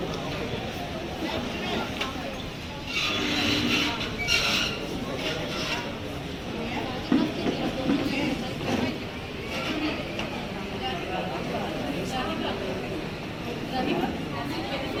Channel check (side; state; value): both; identical; correlation 1.00